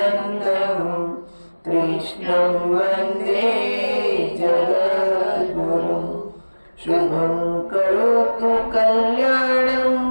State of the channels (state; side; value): inverted; both; correlation -1.00